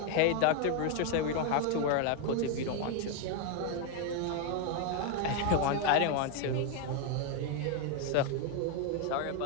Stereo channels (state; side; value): different; both; correlation 0.01